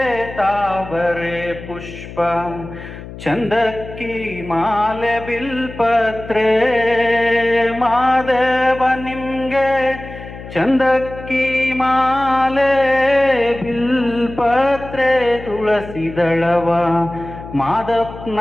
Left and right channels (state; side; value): noise; left; hum, 13 dB below the sound